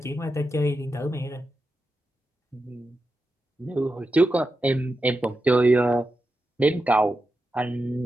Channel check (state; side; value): normal; both; correlation 0.89